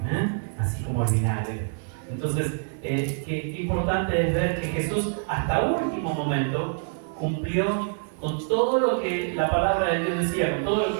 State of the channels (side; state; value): left; silent; digital silence